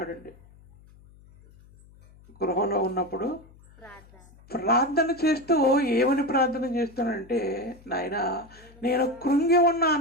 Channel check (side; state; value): left; noise; hum, 25 dB below the sound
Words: గృహంలో ఉన్నప్పుడు ప్రార్థన చేస్తూ ఏమని ప్రార్థన చేస్తున్నాడంటే, నాయనా నేను కృంగి